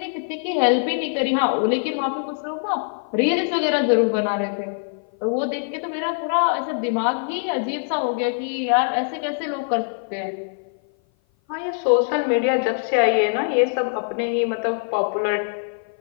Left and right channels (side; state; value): right; silent; 56 dB below the other